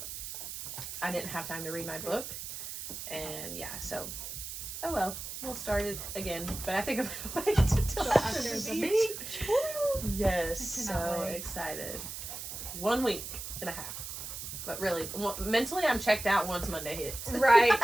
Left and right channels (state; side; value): noise; right; hiss, 8 dB below the sound